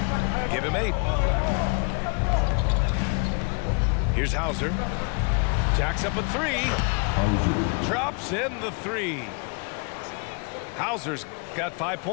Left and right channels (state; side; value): quieter; right; 34.7 dB